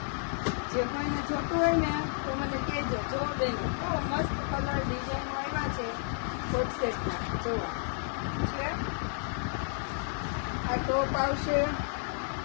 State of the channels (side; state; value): right; silent; 57 dB below the other